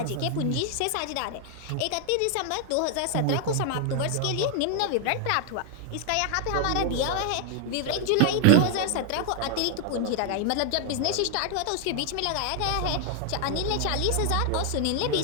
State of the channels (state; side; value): different; both; correlation 0.00